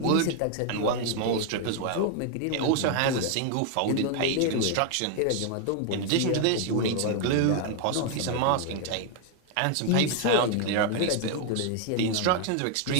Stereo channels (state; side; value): different; both; correlation 0.00